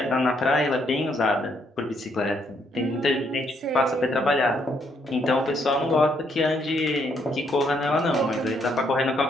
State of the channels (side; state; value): both; normal; correlation 0.72